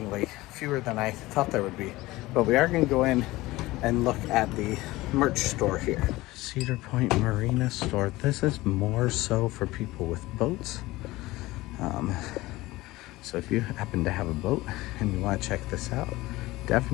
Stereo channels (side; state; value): right; quieter; 19.1 dB